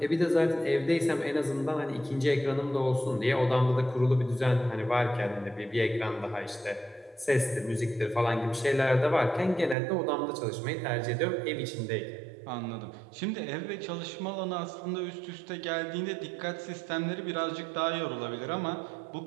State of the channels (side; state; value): left; drops out; at 9.8 s